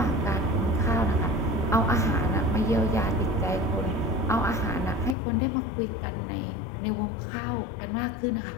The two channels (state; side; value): drops out; right; at 5.2 s